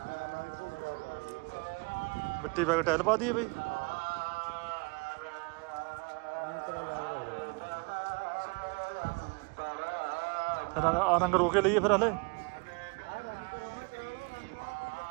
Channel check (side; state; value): left; quieter; 30.6 dB